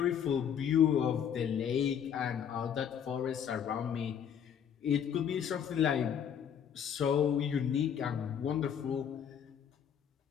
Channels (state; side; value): quieter; right; 8.4 dB